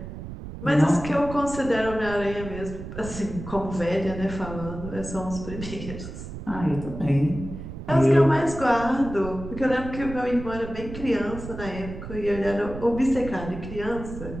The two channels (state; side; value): noise; right; rumble, 10 dB below the sound